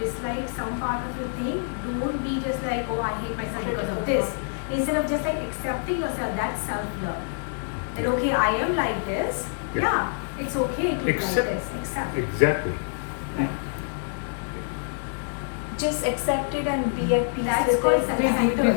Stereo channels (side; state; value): right; silent; 61 dB below the other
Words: some part of a thing, don't be just like, oh, I hate myself because of this. Instead of just like accepting yourself, that's self-love. That okay, I am like this. Yeah. Yeah, it's okay to be like Accept- this. Accept. Exactly. Just accept it and be at peace That's with called it. self-centered.